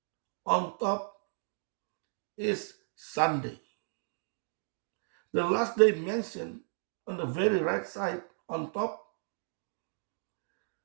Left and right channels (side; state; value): left; silent; digital silence